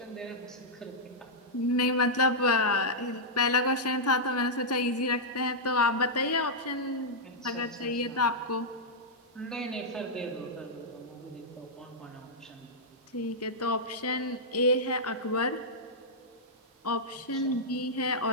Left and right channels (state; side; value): normal; both; correlation -0.08